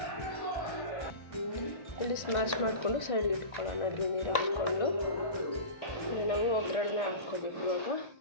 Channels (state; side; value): late; right; 1.6 ms